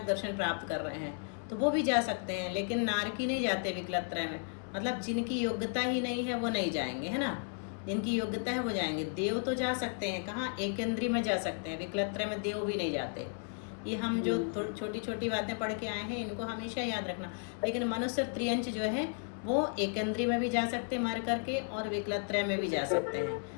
दर्शन प्राप्त कर रहे हैं तो वो भी जा सकते हैं, लेकिन नारकी नहीं जाते विकलत्रय में। मतलब जिनकी योग्यता ही नहीं है वो नहीं जाएंगे, है ना, जिनकी योग्यता है वो जाएंगे। देव तो जा सकते हैं, कहाँ, एकेंद्रीय में जा सकते हैं, विकलत्रय में देव भी नहीं जाते। ये हम जो छोटी छोटी बातें पढ़ के आए हैं इनको हमेशा याद रखना। लेकिन मनुष्य त्रियंच जो है वो एकेंद्रीय में भी जा सकते हैं मर करके, और विकलत्रय में भी जा सकते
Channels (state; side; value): silent; right; 55 dB below the other